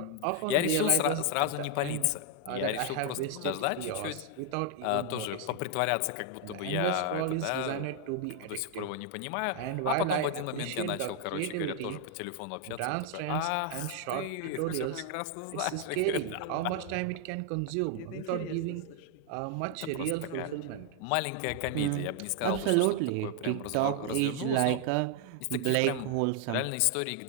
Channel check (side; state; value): both; different; correlation 0.00